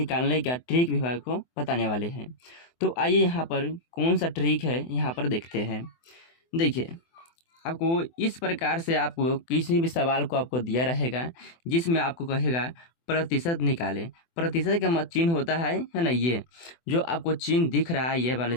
का ट्रिक भी आपको बताने वाले हैं। तो आइए यहाँ पर कौन सा ट्रिक है यहाँ पर देखते हैं। देखिए, आपको इस प्रकार से आपको किसी भी सवाल को आपको दिया रहेगा जिसमें आपको कहेगा प्रतिशत निकालें। प्रतिशत का चिन्ह होता है ना, ये जो आपको चिन्ह दिख रहा है, ये वाला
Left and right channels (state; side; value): late; right; 24 ms